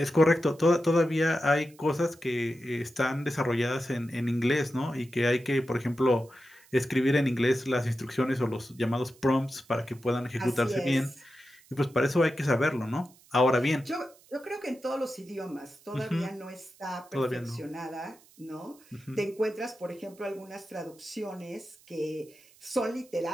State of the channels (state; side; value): noise; right; hiss, 27 dB below the sound